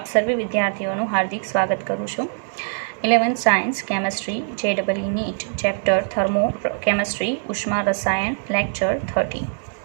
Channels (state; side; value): silent; left; digital silence